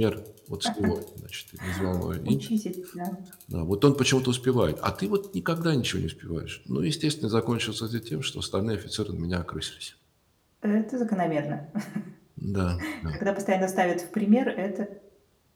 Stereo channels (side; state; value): both; identical; correlation 1.00